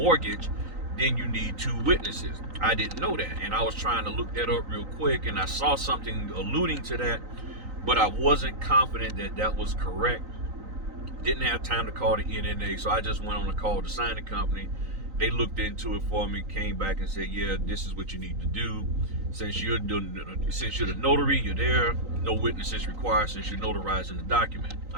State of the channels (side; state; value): left; late; 3.9 ms